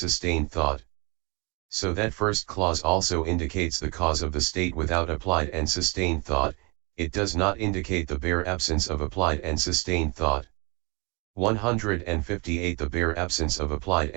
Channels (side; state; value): left; quieter; 29.3 dB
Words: thought. So that first clause also indicates the cause of the state without applied and sustained thought, it does not indicate the bare absence of applied and sustained thought. 158. The bare absence of applied